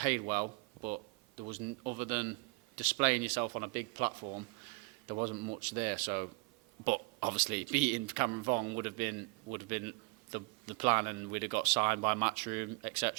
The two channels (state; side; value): quieter; left; 30.6 dB